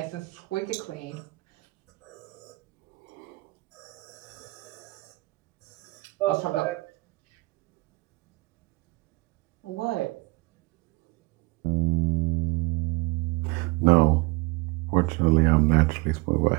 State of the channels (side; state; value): left; quieter; 24.4 dB